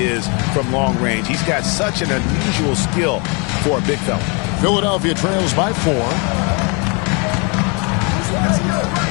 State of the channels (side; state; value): right; quieter; 32.4 dB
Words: is from long range. He's got such an unusual skill for a big fella. Philadelphia trails by 4.